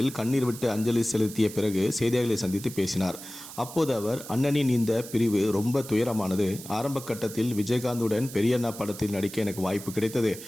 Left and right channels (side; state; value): right; noise; hiss, 13 dB below the sound